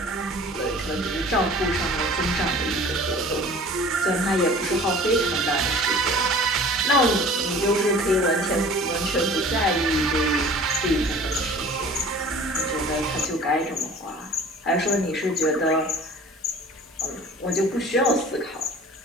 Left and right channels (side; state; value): both; normal; correlation 0.45